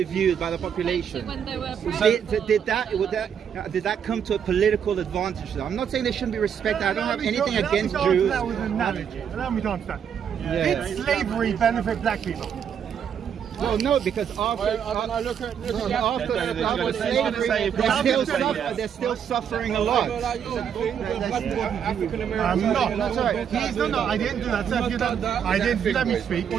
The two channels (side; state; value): left; quieter; 8.1 dB